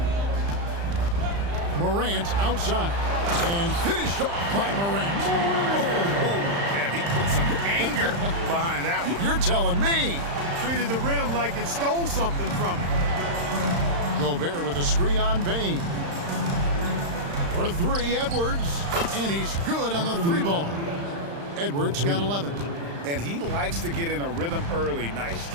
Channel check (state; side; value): late; left; 35 ms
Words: Morant outside. And finished off by Morant. Yeah, he put some anger behind that one. You're telling me. Treated the rim like it stole something from him. Gobert with a screen on Bane. For 3, Edwards. And he's good on the 3 ball. Edwards got 11. And he likes to get in a rhythm early. Nice